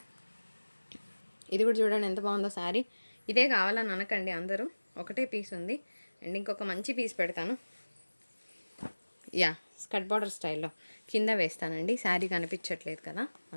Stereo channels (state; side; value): inverted; both; correlation -1.00